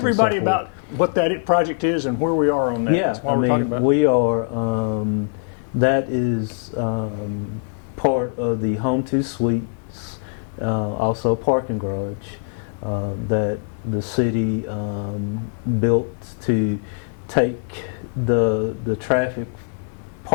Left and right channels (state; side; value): silent; right; 64 dB below the other